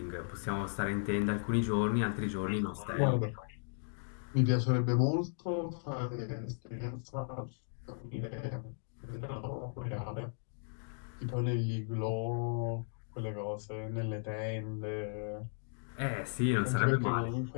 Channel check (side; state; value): right; silent; digital silence